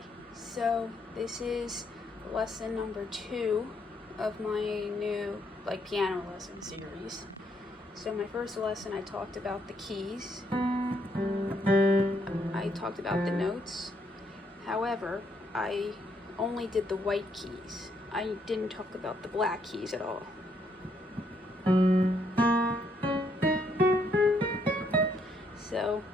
so this is lesson number 2 of my new piano lesson series. So my first lesson I talked about the keys, I talked about the notes. However, I only did the white keys. I didn't talk about the black keys at all. So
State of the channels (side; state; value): both; normal; correlation 0.73